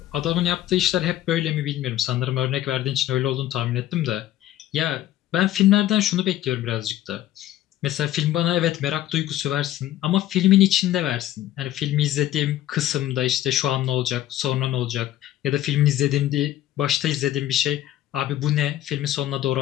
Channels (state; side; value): quieter; right; 13.4 dB